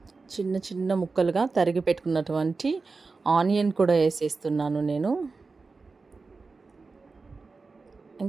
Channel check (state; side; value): quieter; left; 4.1 dB